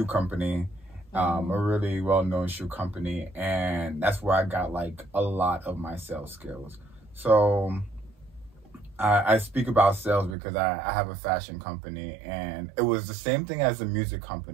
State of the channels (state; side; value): drops out; left; at 10.4 s